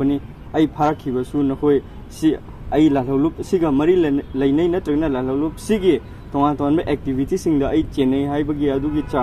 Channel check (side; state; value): both; identical; correlation 1.00